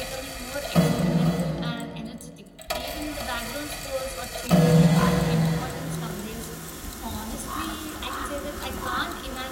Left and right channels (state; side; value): identical; both; correlation 1.00